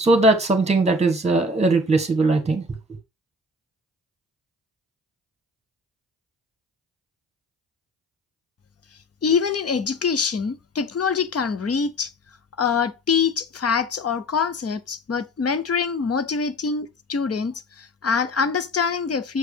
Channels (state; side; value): normal; both; correlation 0.41